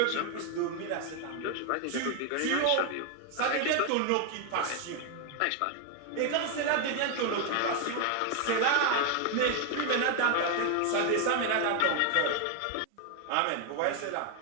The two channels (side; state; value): both; different; correlation 0.01